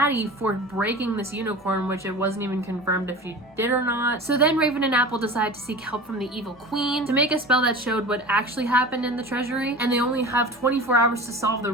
for breaking this unicorn, which it wasn't even confirmed if she did or not. So then Raven and Apple decide to seek help from the evil queen to make a spell that showed what actually happened in the treasury, and they only have 24 hours to solve the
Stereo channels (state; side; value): normal; both; correlation 0.35